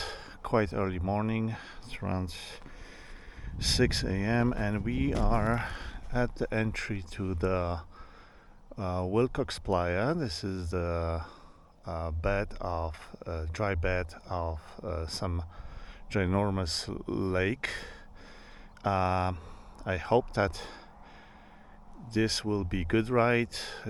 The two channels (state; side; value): identical; both; correlation 1.00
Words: quite early morning, it's around 6 a.m., and we are at the entry to the Willcox Playa. This is the dry bed of some ginormous lake. I hope that this will be good ride,